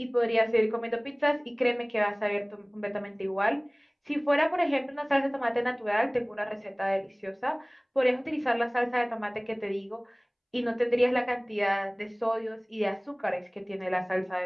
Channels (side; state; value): both; identical; correlation 1.00